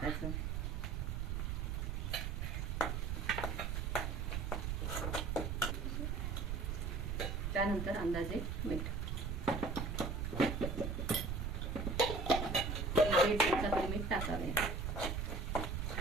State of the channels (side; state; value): right; noise; rumble, 1 dB below the sound